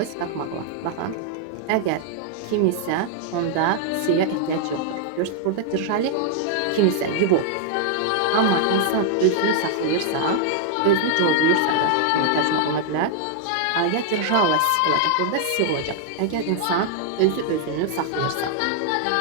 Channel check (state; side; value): different; both; correlation 0.00